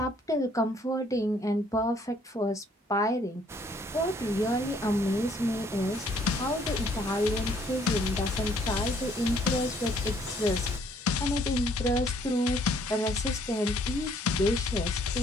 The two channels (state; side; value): normal; both; correlation 0.63